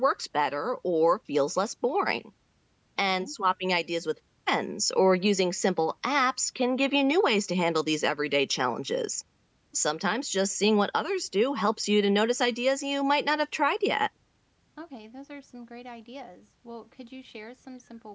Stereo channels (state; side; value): identical; both; correlation 1.00